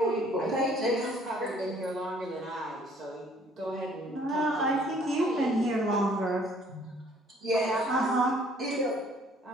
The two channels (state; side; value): normal; both; correlation 0.59